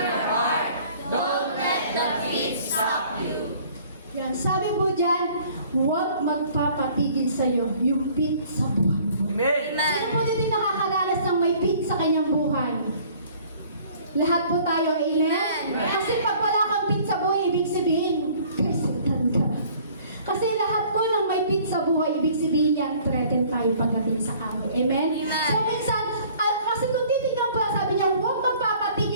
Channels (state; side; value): inverted; both; correlation -0.54